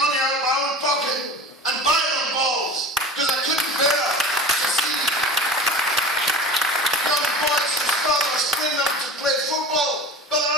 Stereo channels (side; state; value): both; normal; correlation 0.35